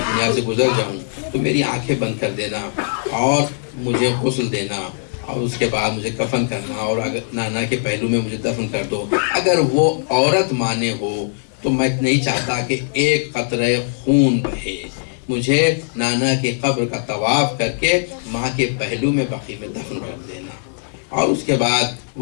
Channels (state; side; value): silent; right; digital silence